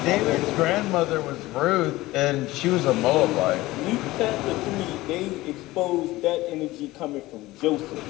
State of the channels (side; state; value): right; quieter; 18.4 dB